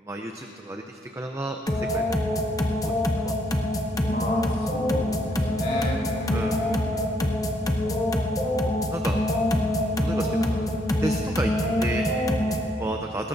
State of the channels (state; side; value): normal; both; correlation 0.72